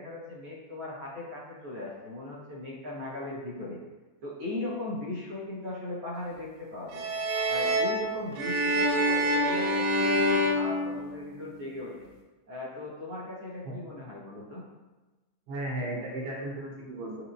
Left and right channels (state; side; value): late; left; 14 ms